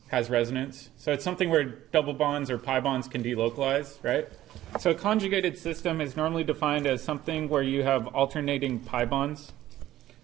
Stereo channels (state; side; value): quieter; left; 14.1 dB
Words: Has resonance. So it's something where double bonds or pi bonds can delocalize, right? So a conjugated system is normally defined as something where you have alternating pi bonds.